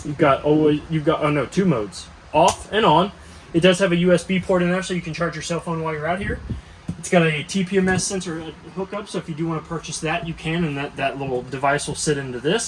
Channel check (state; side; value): identical; both; correlation 1.00